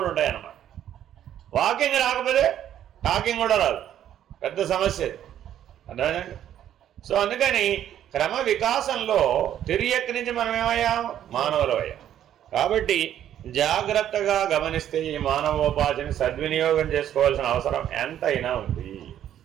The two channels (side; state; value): left; quieter; 10.8 dB